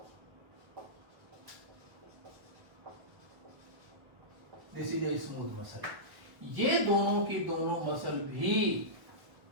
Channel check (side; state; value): left; late; 1.1 ms